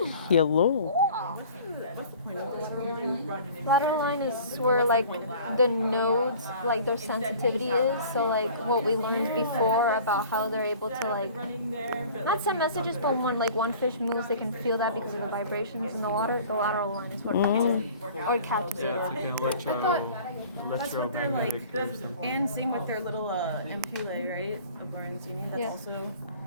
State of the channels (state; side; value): inverted; both; correlation -0.46